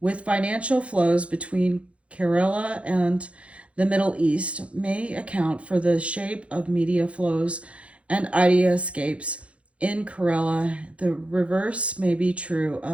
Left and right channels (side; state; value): left; late; 0.062 ms